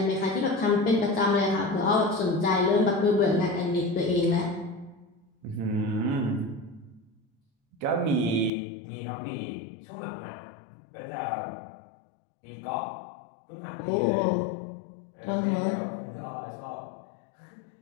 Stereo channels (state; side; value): drops out; right; at 8.5 s